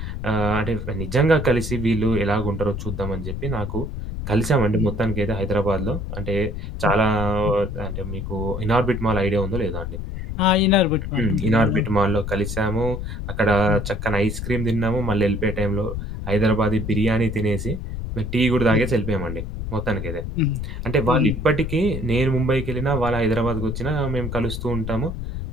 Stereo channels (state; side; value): noise; left; rumble, 5 dB below the sound